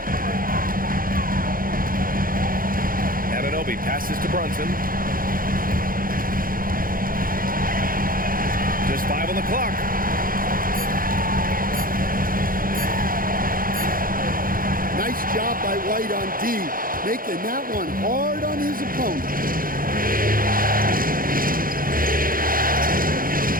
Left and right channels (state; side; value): late; left; 0.41 ms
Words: Anunoby passes to Brunson. Just 5 on the clock. Nice job by White on D, making that one hard on his opponent.